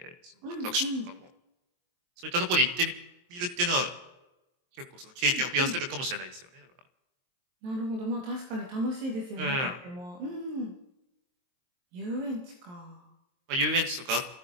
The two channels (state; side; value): late; left; 23 ms